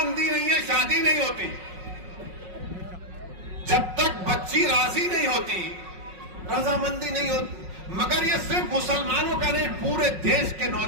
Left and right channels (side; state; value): left; late; 5.4 ms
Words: नहीं है शादी नहीं होती। जब तक बच्ची राजी राजी नहीं होती, रजामंदी नहीं होती, मगर ये सिर्फ मुसलमानों का नहीं, पूरे देश के